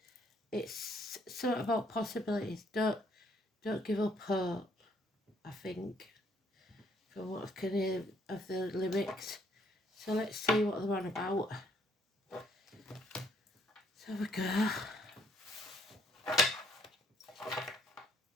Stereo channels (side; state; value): both; normal; correlation 0.66